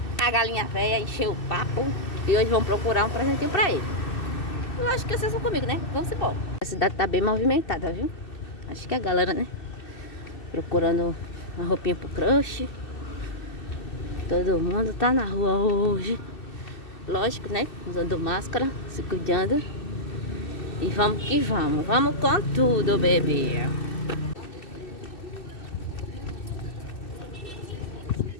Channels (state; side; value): late; right; 2.6 ms